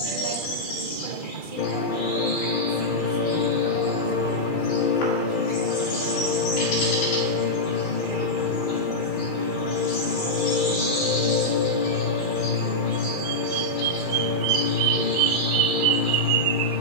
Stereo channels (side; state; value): right; late; 2.3 ms